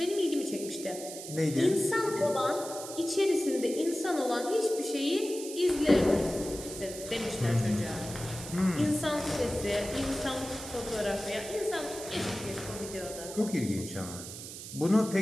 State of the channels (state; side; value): noise; right; hiss, 11 dB below the sound